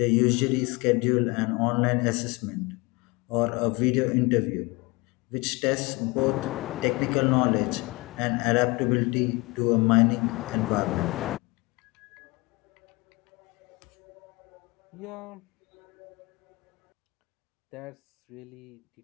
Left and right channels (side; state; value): right; quieter; 24.4 dB